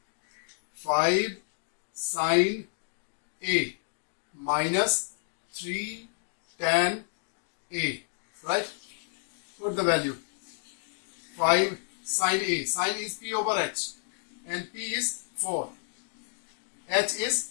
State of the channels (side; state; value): right; silent; digital silence